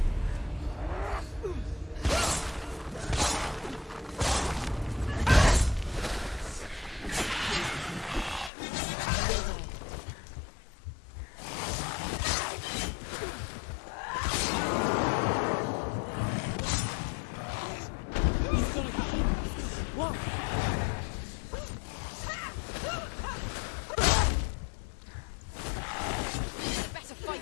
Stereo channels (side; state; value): right; drops out; at 8.5 s